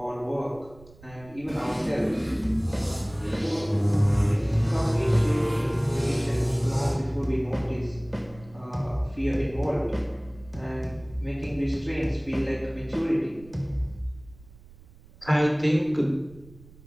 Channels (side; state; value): right; noise; rumble, 23 dB below the sound